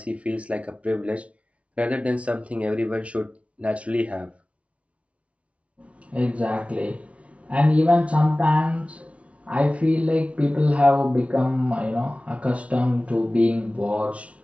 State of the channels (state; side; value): late; left; 0.063 ms